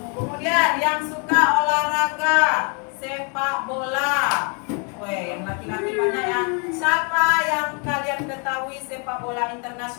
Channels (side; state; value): right; quieter; 36.7 dB